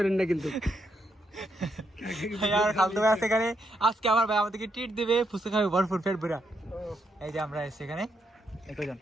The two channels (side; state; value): both; normal; correlation 0.79